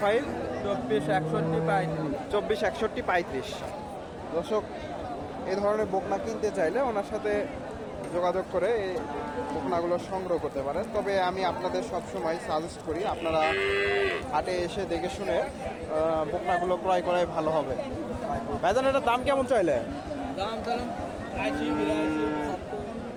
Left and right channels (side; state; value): both; identical; correlation 1.00